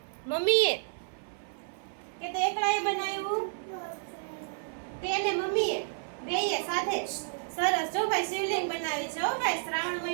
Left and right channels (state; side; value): silent; left; 57 dB below the other